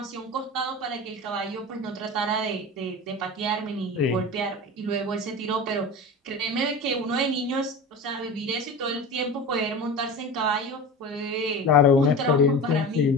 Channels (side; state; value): both; normal; correlation 0.31